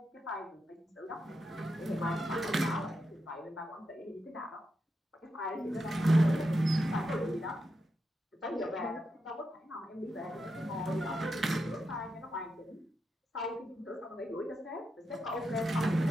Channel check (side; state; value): both; normal; correlation 0.86